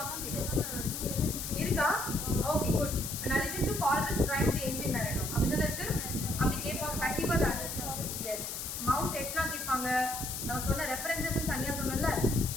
கேட்பாங்க. இருக்கா? Okay good. an allusion to Coleridge rhyme the ancient mariner அப்படிதான் இருக்கு. அப்படி கேட்பாங்க கண்டிப்பா தான். எஸ். மவுண்ட் எட்னா கேட்பாங்க. நான் சொன்ன ரெஃபரன்சஸ் தனியா சொன்னேன்ல,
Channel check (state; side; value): noise; left; hiss, 5 dB below the sound